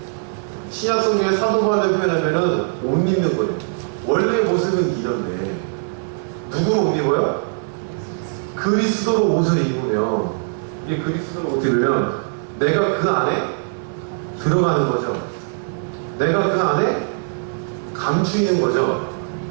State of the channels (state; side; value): silent; left; digital silence